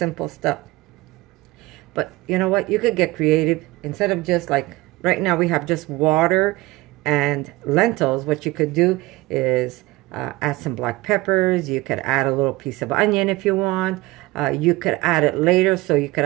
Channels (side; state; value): left; quieter; 19.9 dB